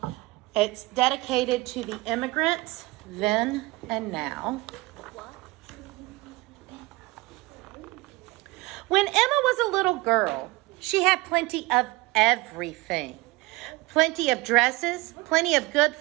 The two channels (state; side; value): quieter; left; 21.7 dB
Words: It's dedicated to the immigrants then and now. When Emma was a little girl, she had plenty of everything. Plenty of dresses, plenty of good